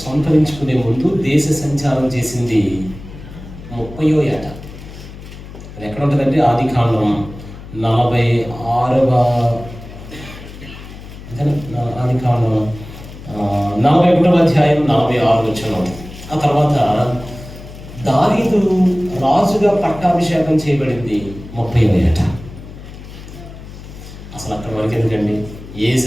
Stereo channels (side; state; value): left; noise; hum, 15 dB below the sound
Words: సంతరించుకునే ముందు దేశ సంచారం చేసింది 30వ ఏట. అది ఎక్కడ ఉంటుందంటే ఆదికాండం 46వ ఆదికాండం 41వ అధ్యాయం 46వ వచనం. ఆ తర్వాత దావీదు రాజుగా పట్టాభిషేకం చేయబడింది 30వ ఏట. అసలు అక్కడ వరకు ఎందుకండి,